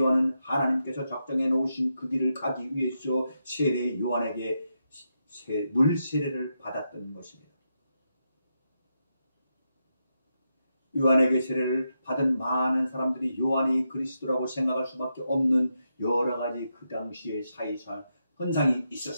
하나님께서 작정해 놓으신 그 길을 가기 위해서 세례 요한에게 물 세례를 받았던 것입니다. 요한에게 세례를 받은 많은 사람들이 요한이 그리스도라고 생각할 수밖에 없는 여러 가지 그 당시의 사이사 현상이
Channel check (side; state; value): both; inverted; correlation -0.85